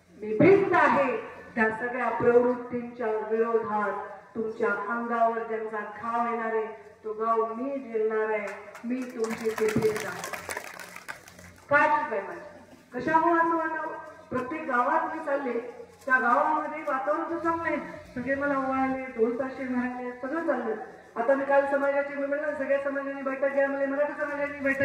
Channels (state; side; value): identical; both; correlation 1.00